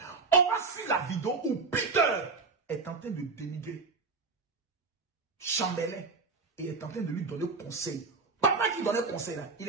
On va suivre la vidéo où Peter est en train de dénigrer Chambellan et est en train de lui donner conseil. Papa qui donnait conseil là, il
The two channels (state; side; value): quieter; left; 4.3 dB